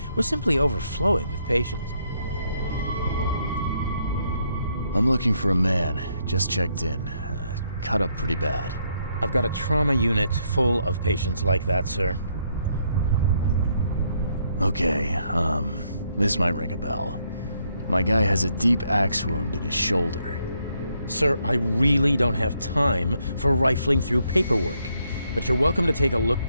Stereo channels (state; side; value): inverted; both; correlation -0.74